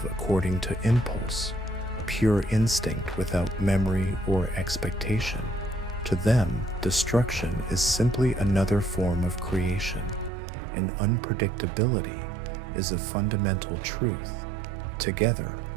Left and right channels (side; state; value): left; drops out; at 10.3 s